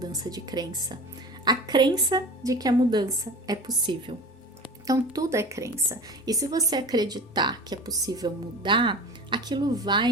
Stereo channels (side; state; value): both; normal; correlation 0.35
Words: de crença? A crença de que a mudança é possível. Então, tudo é crença. E se você acreditar que é possível mudar, aquilo